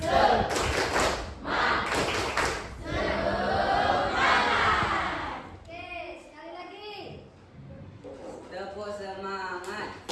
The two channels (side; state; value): both; identical; correlation 1.00